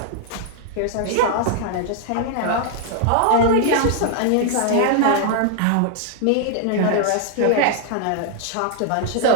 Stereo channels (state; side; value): different; both; correlation 0.00